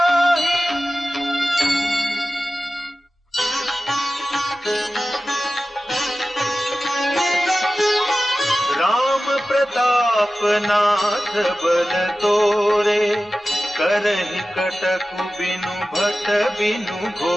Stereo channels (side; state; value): both; normal; correlation 0.95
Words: राम प्रताप नाथ बल तोरे, करहि कटकु बिनु भट बिनु